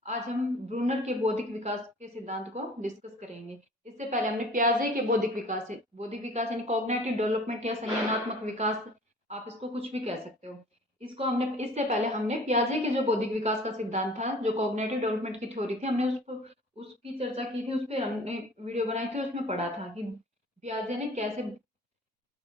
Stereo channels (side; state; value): both; normal; correlation 0.47